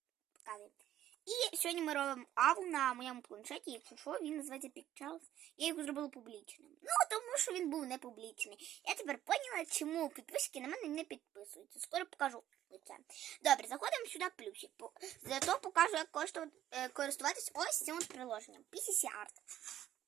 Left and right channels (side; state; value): left; quieter; 12.2 dB